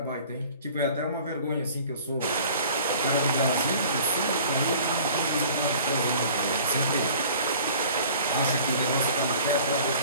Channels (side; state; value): both; inverted; correlation -0.48